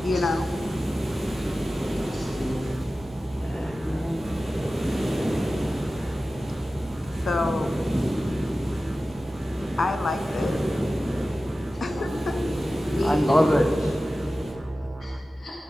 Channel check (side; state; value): both; normal; correlation 0.95